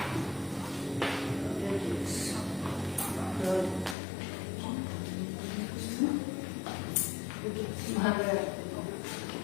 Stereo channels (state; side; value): drops out; right; at 4.0 s